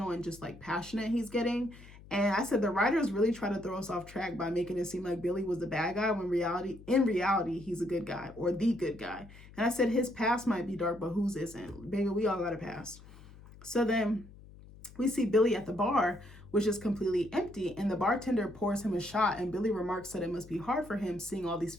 and just like passionate he's getting. And I said, the writers really try to throw us off track by making it seem like Billy was the bad guy when in reality, he's a good guy or the good guy. And I said, his past might be dark, but whose isn't? Baby, we all got a past. So then we see Billy at the bar, which is completely empty, and the bartender pours him a shot, and Billy remarks that it must be hard for him seeing all these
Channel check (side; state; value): left; noise; hum, 20 dB below the sound